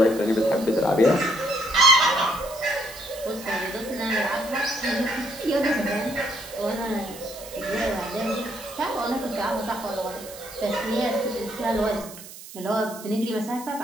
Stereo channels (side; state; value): right; noise; hiss, 15 dB below the sound